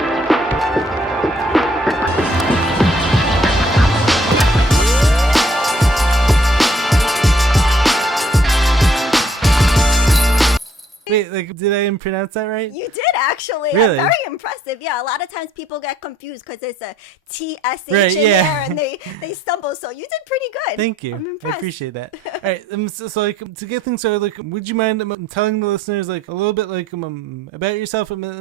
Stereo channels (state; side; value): normal; both; correlation 0.64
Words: Wait, did I pronounce that right? You did actually. Really? Very impressive. Yeah, a lot of times people get confused because there's a TSH Right, in yeah. there and they stumble. So you did pretty good. Thank you. I'm I impressed. appreciate that. All right, so to get things started, would you mind telling the listeners a little bit about yourself, and